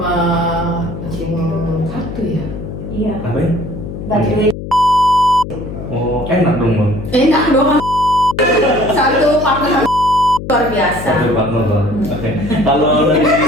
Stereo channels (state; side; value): noise; left; hum, 9 dB below the sound